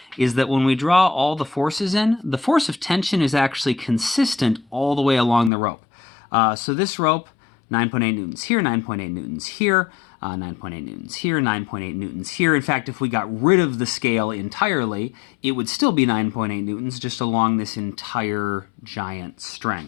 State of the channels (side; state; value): right; drops out; at 5.5 s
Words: is that when we draw all the forces in, the force of tension is actually consistent all the way along the rope. So this rope, 9.8 newtons here, 9.8 newtons here, 9.8 newtons here, 9.8 newtons here. In fact, if we got rid of the scale entirely, it would still be 9.8 newtons just along this entire giant